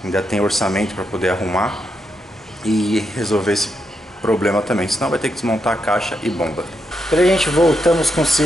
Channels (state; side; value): normal; both; correlation 0.82